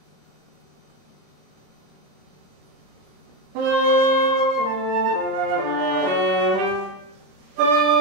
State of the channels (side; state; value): both; normal; correlation 0.12